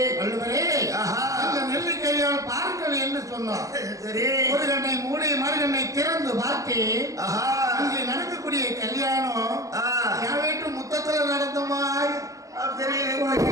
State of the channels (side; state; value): left; late; 0.16 ms